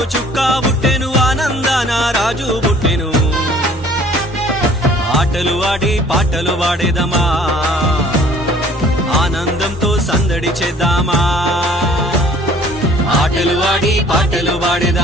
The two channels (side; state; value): both; normal; correlation 0.53